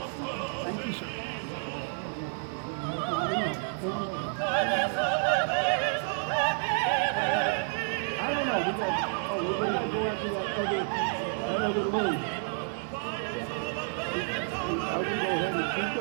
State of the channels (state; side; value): silent; left; 58 dB below the other